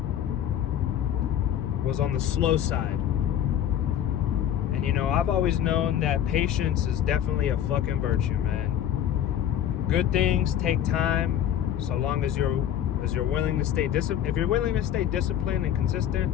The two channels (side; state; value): right; quieter; 10.3 dB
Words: the slow side. And I've always known that patience is definitely a fucking virtue, man. Good things take time, so long as you're willing to stay disciplined. If you're willing to stay disciplined and consistent,